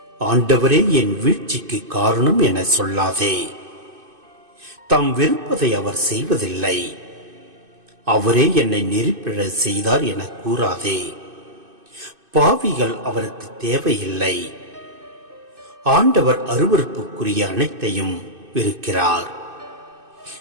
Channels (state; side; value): late; left; 2.5 ms